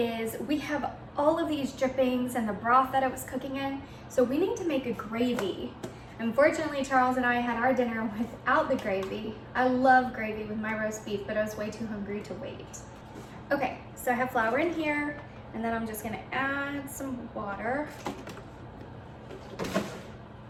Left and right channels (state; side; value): identical; both; correlation 1.00